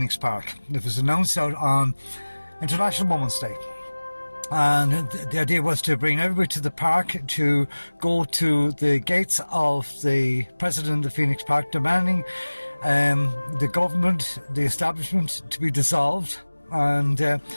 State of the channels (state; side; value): inverted; both; correlation -1.00